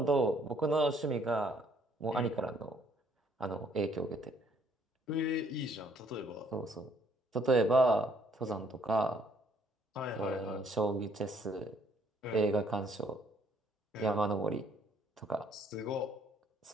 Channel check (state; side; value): normal; both; correlation 0.64